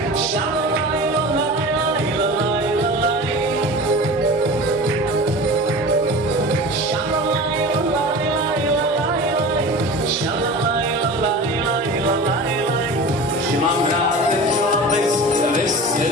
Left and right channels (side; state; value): both; normal; correlation 0.35